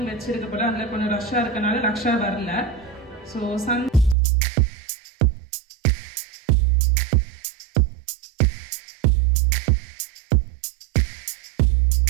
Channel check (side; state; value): left; drops out; at 4.2 s